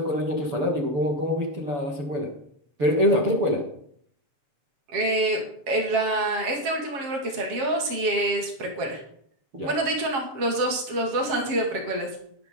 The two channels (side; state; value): left; late; 7.4 ms